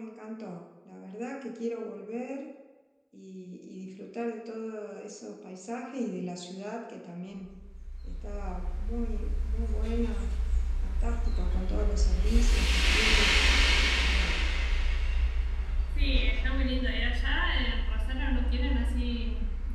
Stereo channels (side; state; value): both; identical; correlation 1.00